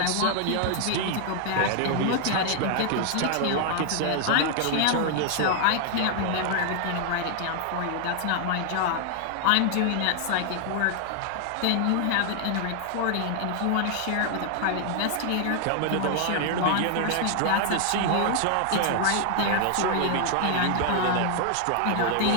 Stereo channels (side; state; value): both; different; correlation 0.00